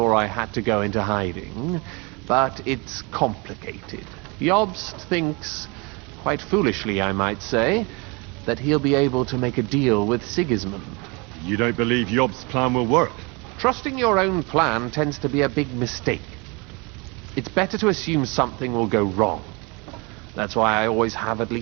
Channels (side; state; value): left; quieter; 29.1 dB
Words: I had to go into hiding, but it's complicated. Jobst thinks, quite foolishly I might say, that he'll be able to make a deal with Sigismund. You don't believe Jobst's plan will work? Trusting your own plan tends to be a big mistake. It's better to assume something will go wrong. That's why I always have at